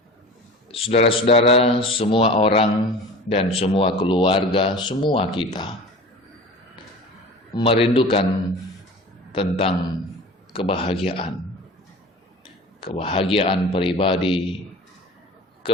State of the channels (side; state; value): both; normal; correlation 0.38